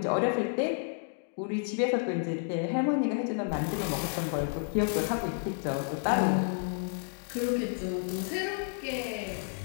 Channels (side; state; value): right; silent; 57 dB below the other